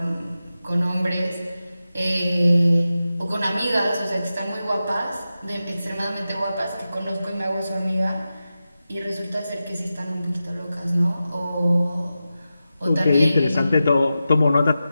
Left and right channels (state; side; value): inverted; both; correlation -0.92